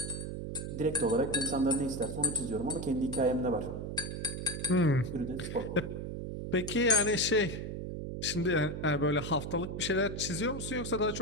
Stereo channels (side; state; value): right; noise; hum, 5 dB below the sound